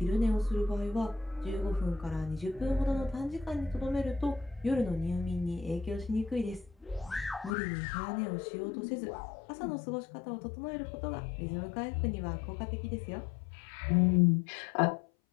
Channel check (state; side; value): drops out; right; at 7.5 s